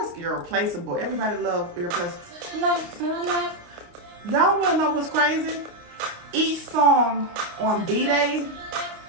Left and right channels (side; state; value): left; late; 29 ms